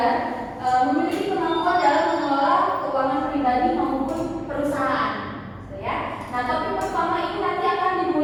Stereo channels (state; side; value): identical; both; correlation 1.00